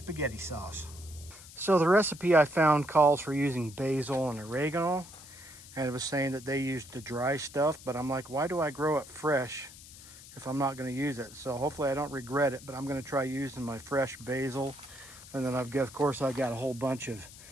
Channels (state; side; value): noise; left; hiss, 18 dB below the sound